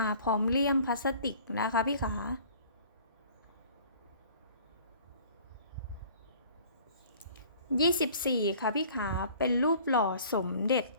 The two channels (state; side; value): inverted; both; correlation -0.51